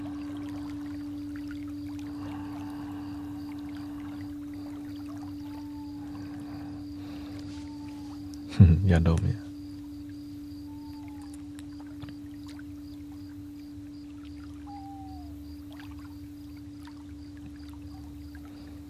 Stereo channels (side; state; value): both; identical; correlation 1.00